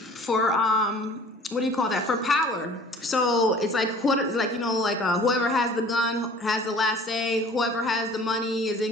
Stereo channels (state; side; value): normal; both; correlation 0.48